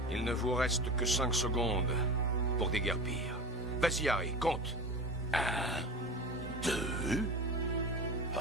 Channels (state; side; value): normal; both; correlation 0.31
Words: Il ne vous reste que 5 secondes pour déguerpir. Vas-y, Harry, compte. 2.